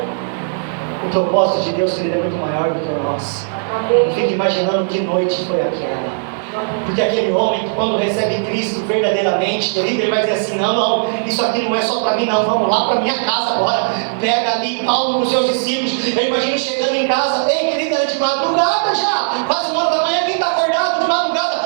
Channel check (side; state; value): left; silent; digital silence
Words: O propósito de Deus, querido, é muito maior do que o nosso. Eu fico imaginando que noite foi aquela. Porque aquele homem, quando recebe Cristo verdadeiramente, querido, ele vai dizer assim, não, isso aqui não é só para mim não, vamos lá para minha casa agora. Pega ali Paulo com os seus discípulos. Eu imagino chegando em casa, ei, querido, era de madrugada já, quase 1h da manhã, quem está acordado de madrugada,